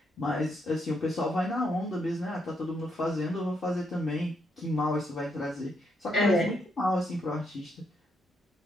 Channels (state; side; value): normal; both; correlation 0.77